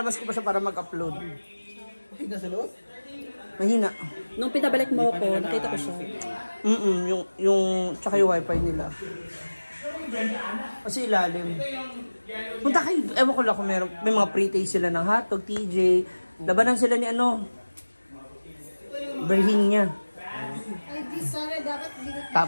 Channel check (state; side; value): inverted; both; correlation -1.00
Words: ko pa siya para mag-upload. Tignan sa loob? Mahina. Nung pinabalik mo ako, nakita ko siya. Tsaka yung wifi nila. Kasi ilalim. Punta kayo, ewan ko lang kung may mga pre-taste sila ng hotdog, TJ. Labanan sila ni Berhin niya.